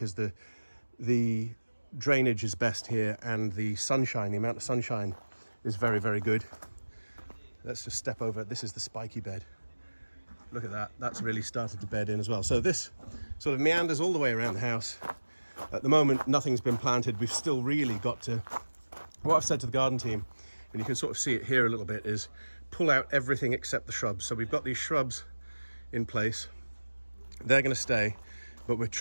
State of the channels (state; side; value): inverted; both; correlation -1.00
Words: the drainage is best here and the sunshine, the amount of sunshine is very, very good. Let's just step over. This is the spiky bed. Look at that. That's really started to bed in as well. So this sort of meanders all the way around the house. At the moment, nothing's been planted. We've still really got to, what I've said to the garden team, and you can sort of see it here a little bit, is pull out everything except the shrubs. So we've got these shrubs in place. They're going to stay, but we're